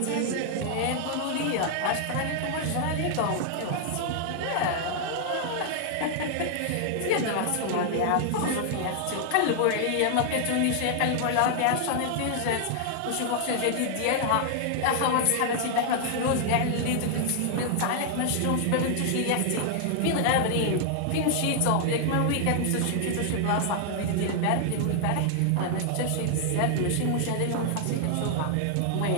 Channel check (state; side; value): different; both; correlation 0.00